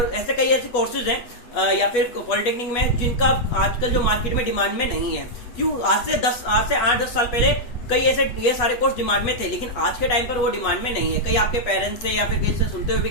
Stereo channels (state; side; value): late; right; 8.3 ms